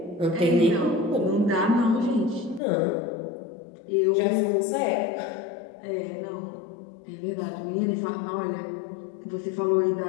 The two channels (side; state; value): right; drops out; at 2.6 s